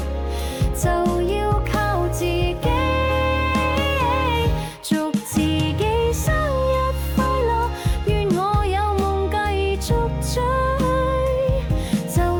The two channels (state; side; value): identical; both; correlation 1.00